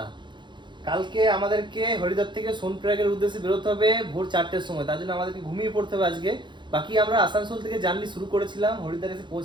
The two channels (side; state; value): left; late; 0.23 ms